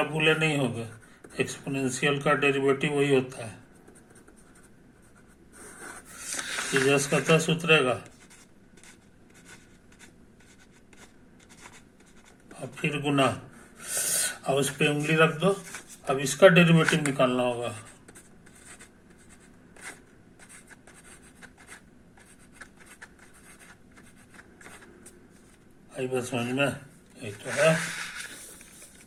भूले नहीं होगा, एक्सपोनेंशियल का डेरिवेटिव वही होता है, ये जस का तस उतरेगा और फिर गुना, अब उस पे उंगली रख दो। अब इसका डेरिवेटिव निकालना होगा। आई बस समझ में? ये तो है।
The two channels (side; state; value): both; identical; correlation 1.00